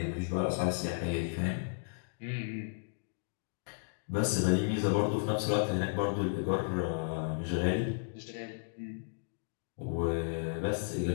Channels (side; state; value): right; silent; digital silence